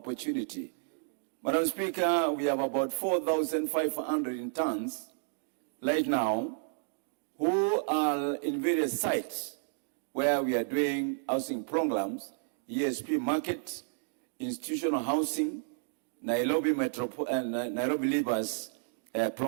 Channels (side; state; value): left; silent; digital silence